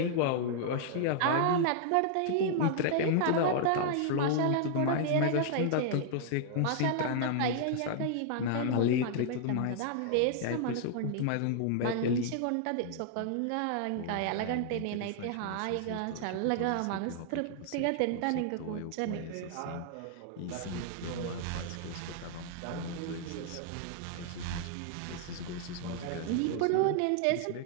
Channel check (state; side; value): different; both; correlation -0.01